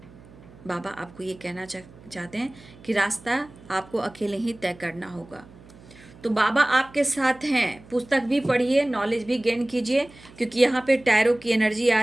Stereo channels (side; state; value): right; noise; hum, 22 dB below the sound